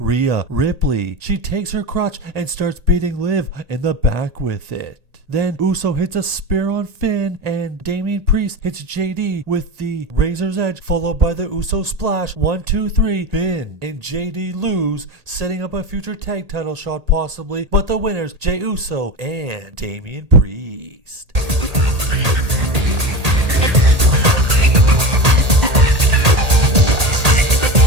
Ripley. She takes her crotch and starts beating Liv in the back with it. Then Uso hits a spear on Finn, and Damian Priest hits JD with the Razor's Edge, followed by the Uso Splash. 1, 2, 3. Finn and JD lose, setting up a future tag title shot possibly, but the winners, Jey Uso and Damian Priest.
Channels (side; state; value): left; late; 1.8 ms